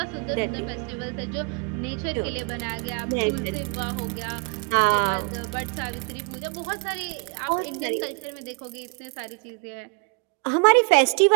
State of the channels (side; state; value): left; quieter; 34.7 dB